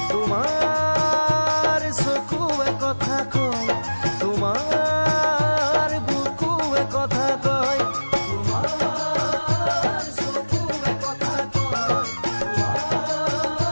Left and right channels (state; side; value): inverted; both; correlation -1.00